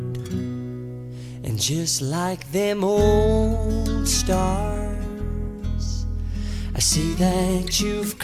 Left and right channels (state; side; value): identical; both; correlation 1.00